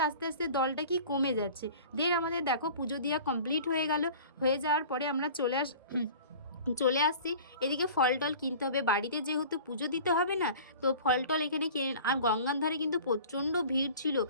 আস্তে আস্তে দলটা কি কমে যাচ্ছে। দেন আমাদের দেখো পুজো দেওয়া কমপ্লিট হয়ে গেল। হয়ে যাওয়ার পরে আমরা চলে আসছি এদিকে। ফল টল কিনতে হবে, বাড়িতে যেহেতু পুজো দিতে হবে না, তো ফল টল এখানে কিনে। আর গঙ্গার ধারে কিন্তু প্রচণ্ড ভিড় ছিল,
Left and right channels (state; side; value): inverted; both; correlation -0.42